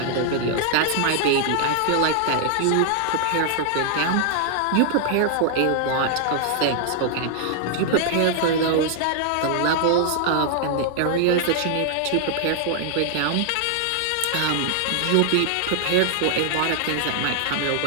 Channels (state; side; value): different; both; correlation 0.00